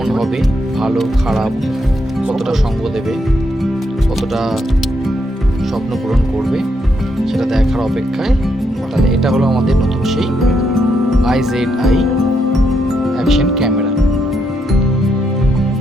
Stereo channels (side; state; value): both; normal; correlation 0.78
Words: হবে, ভালো খারাপ, কতটা সঙ্গ দেবে, কতটা স্বপ্ন পূরণ করবে, সেটা দেখার অপেক্ষায়। তাহলে এটা হলো আমাদের নতুন সেই IZI অ্যাকশন ক্যামেরা,